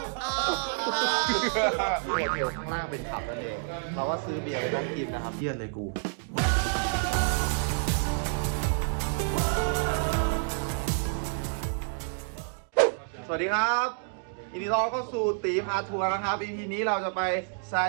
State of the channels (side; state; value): left; silent; digital silence